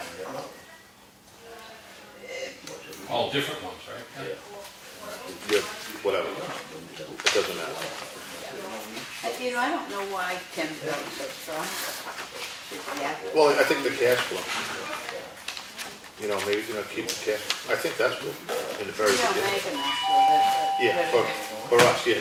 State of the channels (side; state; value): both; identical; correlation 1.00